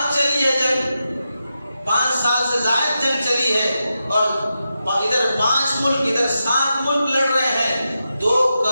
چلی ہے جنگ، 5 سال سے زائد جنگ چلی ہے، اور ادھر 5 ملک ادھر 7 ملک لڑ رہے ہیں۔ 2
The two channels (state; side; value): inverted; both; correlation -0.89